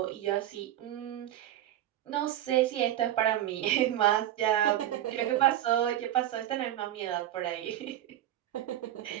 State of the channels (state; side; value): quieter; left; 12.6 dB